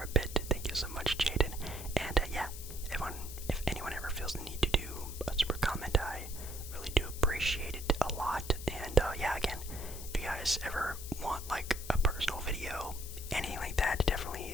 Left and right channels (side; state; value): left; noise; hiss, 11 dB below the sound